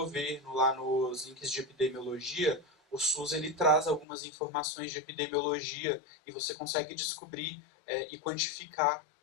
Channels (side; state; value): right; drops out; at 4.0 s